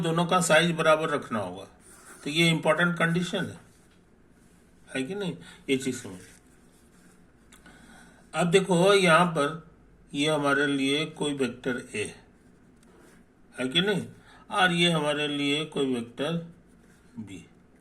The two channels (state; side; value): identical; both; correlation 1.00